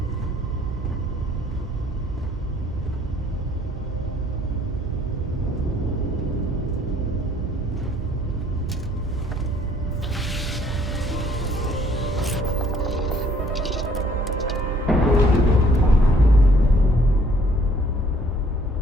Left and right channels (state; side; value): normal; both; correlation 0.61